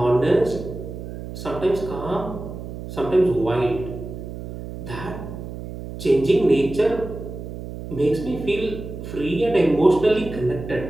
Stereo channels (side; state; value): right; noise; hum, 10 dB below the sound